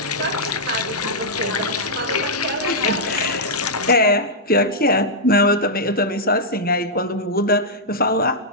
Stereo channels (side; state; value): both; normal; correlation -0.09